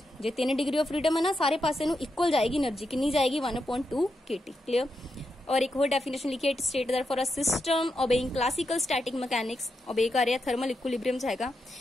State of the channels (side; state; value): both; normal; correlation 0.85